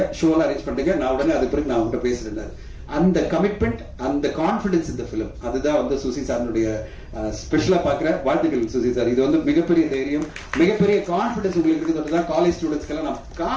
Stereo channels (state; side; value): identical; both; correlation 1.00